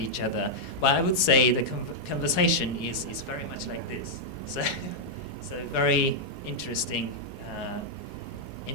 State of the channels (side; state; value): right; late; 4.8 ms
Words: other. Well, I would say the conversation is very much like this. So it's a very interesting